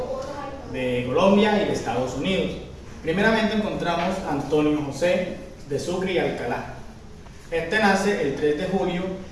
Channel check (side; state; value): both; identical; correlation 1.00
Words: de Colombia y de Estados Unidos. Primeramente encontramos a Antonio José de Sucre y Alcalá. Este nace el 3 de julio